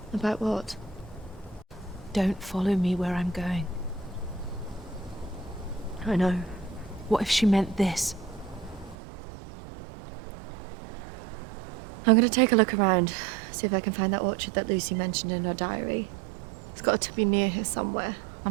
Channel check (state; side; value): drops out; left; at 9.0 s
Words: About what? Don't follow me where I'm going. I know. What if she meant this? I'm gonna take a look around, see if I can find that orchard that Lucy mentioned in her diary. It's got to be near here somewhere.